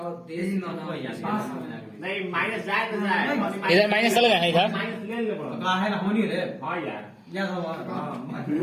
देश बनाओ नहीं माइनस जाए तो जाए इधर माइनस चल गया है इधर। माइनस ले ले पड़ो का है ना होनी रे हां यार या सब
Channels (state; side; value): identical; both; correlation 1.00